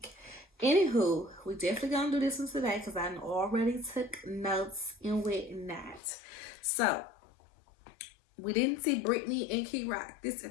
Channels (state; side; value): drops out; right; at 6.0 s